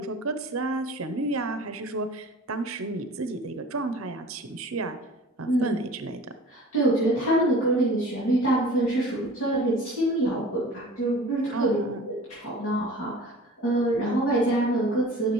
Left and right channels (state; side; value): normal; both; correlation 0.43